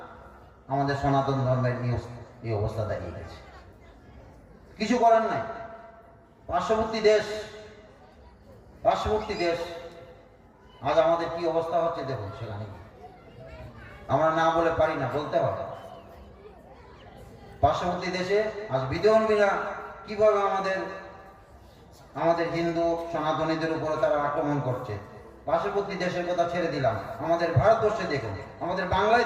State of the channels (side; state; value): both; identical; correlation 1.00